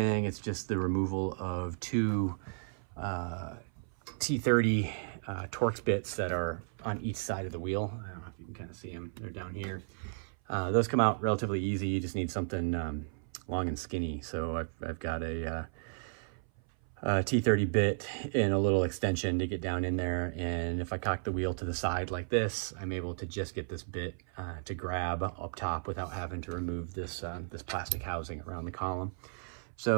It's just the removal of two T30 Torx bits that are on each side of the wheel. I don't know if you can kind of see them. They're down here. Those come out relatively easy. You just need something long and skinny. So I've got a T30 bit and a little extension to get down in there. And if I cock the wheel to the side like this, I'm able to just get this bit to grab up top without having to remove this, this plastic housing around the column.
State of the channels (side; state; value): left; silent; 55 dB below the other